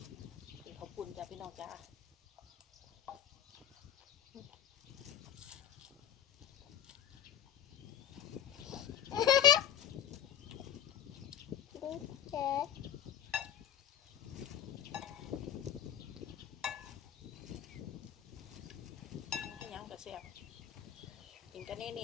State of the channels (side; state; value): right; quieter; 10.1 dB